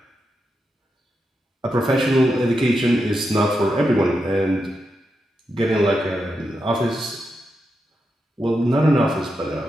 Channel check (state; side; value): normal; both; correlation 0.86